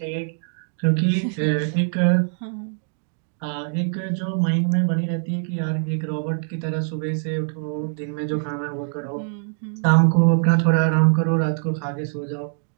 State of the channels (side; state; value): left; silent; digital silence